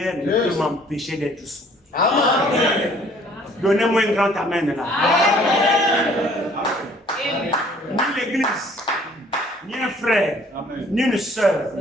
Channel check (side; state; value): both; normal; correlation 0.57